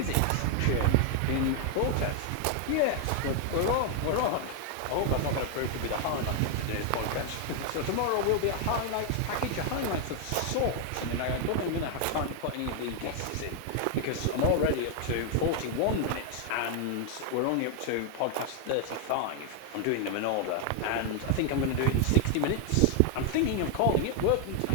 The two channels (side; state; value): both; different; correlation 0.00